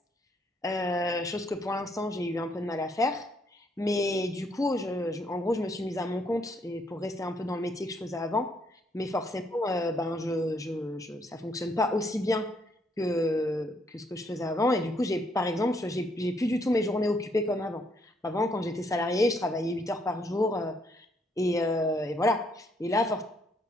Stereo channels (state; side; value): normal; both; correlation 0.71